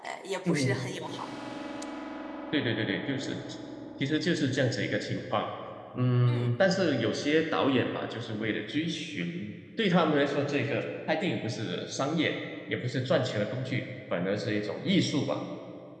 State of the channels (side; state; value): both; identical; correlation 1.00